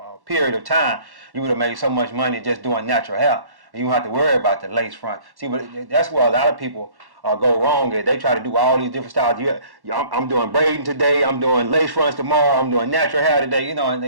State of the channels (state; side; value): late; left; 1.1 ms